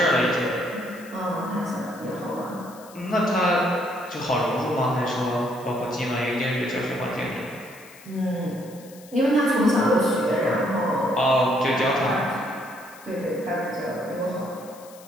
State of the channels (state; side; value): noise; left; hiss, 22 dB below the sound